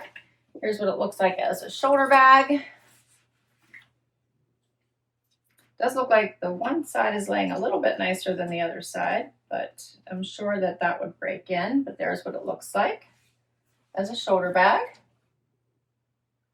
Here's what it looks like as a shoulder bag. Does look like the one side is laying a little bit nicer than the other side, but I'm sure that that would break in. But there's what it looks like as a shoulder bag.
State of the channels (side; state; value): both; identical; correlation 1.00